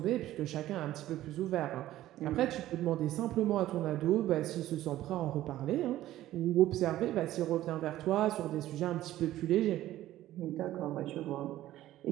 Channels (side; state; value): left; quieter; 14.3 dB